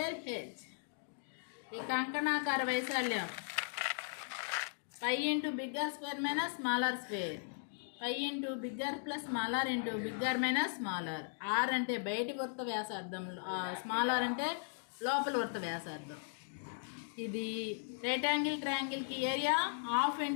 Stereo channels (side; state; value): right; silent; digital silence